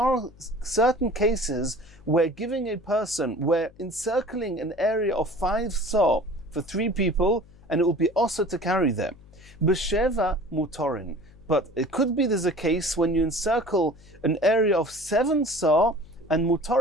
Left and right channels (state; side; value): noise; left; hum, 27 dB below the sound